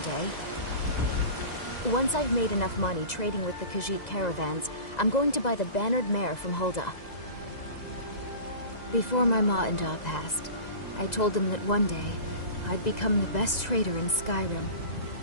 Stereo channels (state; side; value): late; right; 2.0 ms